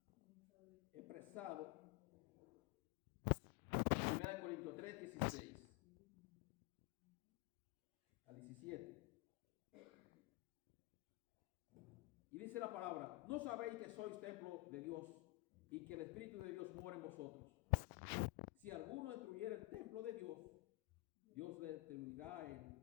expresados 1 Corintios 3, 16 al 17. Y dice la palabra, ¿no sabéis que sois templo de Dios y que el Espíritu de Dios mora en vosotros? Si alguno destruyera el templo de Dios, Dios le destruirá a él,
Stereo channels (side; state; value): right; quieter; 21.8 dB